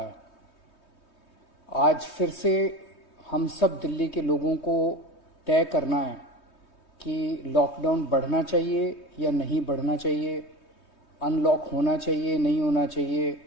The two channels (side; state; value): right; late; 3.2 ms